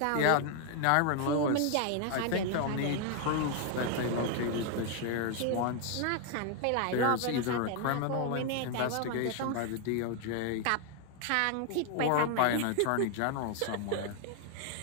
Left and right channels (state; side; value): different; both; correlation 0.00